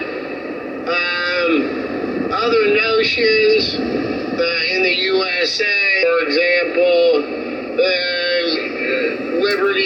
Other notions in the USA, for example,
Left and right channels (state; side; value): identical; both; correlation 1.00